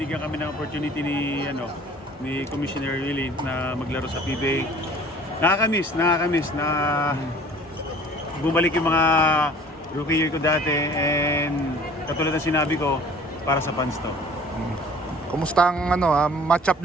kami ng opportunity ni Commissioner Willie na maglaro sa PBA. Nakakamiss na bumalik yung mga rookie year ko dati, and katulad ng sinabi ko, para sa fans to. Kumusta ang match-up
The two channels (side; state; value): both; normal; correlation 0.49